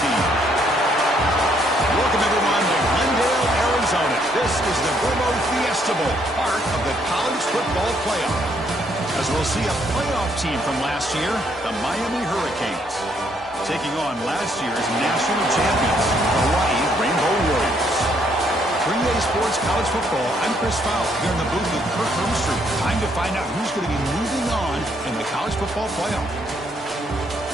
team? Welcome, everyone, to Glendale, Arizona. This is the Verbo Fiesta Bowl, part of the college football playoff. As we'll see a playoff team from last year, the Miami Hurricanes, taking on last year's national champions, Hawaii Rainbow Warriors. 3A Sports College Football, I'm Chris Fowler, here in the booth with Kirk Hermstreet. Time to find out who's going to be moving on in the college football playoff.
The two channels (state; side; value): normal; both; correlation 0.70